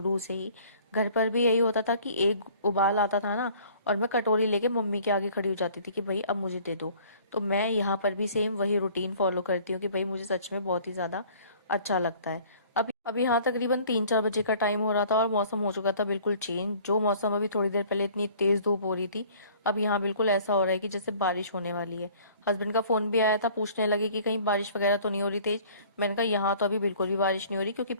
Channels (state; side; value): inverted; both; correlation -0.53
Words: से ही। घर पर भी यही होता था कि एक उबाल आता था ना और मैं कटोरी लेके मम्मी के आगे खड़ी हो जाती थी कि भाई अब मुझे दे दो। तो मैं यहाँ पर भी सेम वही रूटीन फॉलो करती हूँ कि भाई मुझे सच में बहुत ही ज्यादा अच्छा लगता है। अब यहाँ तकरीबन 3-4 बजे का टाइम हो रहा था और मौसम हो चुका था बिल्कुल चेंज। जो मौसम अभी थोड़ी देर पहले इतनी तेज धूप हो रही थी, अब यहाँ बिल्कुल ऐसा हो रहा है कि जैसे बारिश होने वाली है। हस्बैंड का फोन भी आया था, पूछने लगे कि कहीं बारिश वगैरह तो नहीं हो रही तेज। मैंने कहा यहाँ तो अभी बिल्कुल भी बारिश नहीं हो रही, क्योंकि